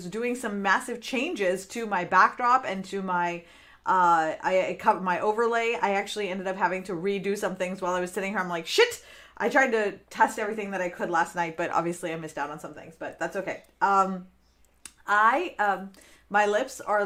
doing some massive changes to my backdrop and to my I covered my overlay. I actually ended up having to redo some things while I was sitting here. I'm like, shit. I tried to test everything that I could last night, but obviously I missed out on some things, but that's okay. I My lips are a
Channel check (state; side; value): identical; both; correlation 1.00